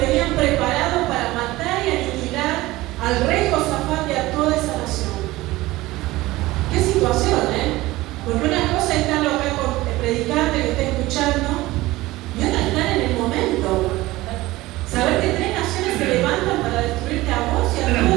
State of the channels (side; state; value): left; quieter; 18.5 dB